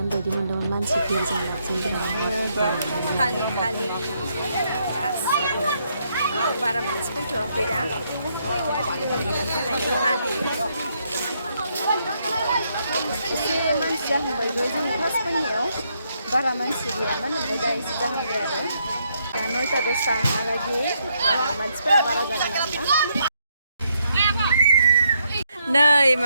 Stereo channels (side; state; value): both; inverted; correlation -0.76